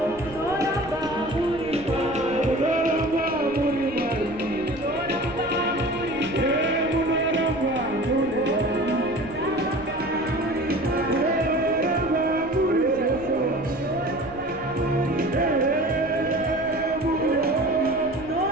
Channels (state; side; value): noise; left; rumble, 17 dB below the sound